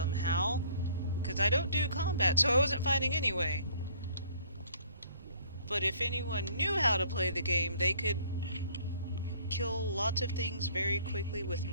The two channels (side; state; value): both; inverted; correlation -0.57